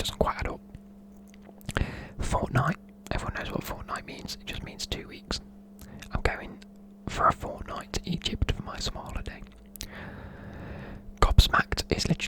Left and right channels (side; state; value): both; identical; correlation 1.00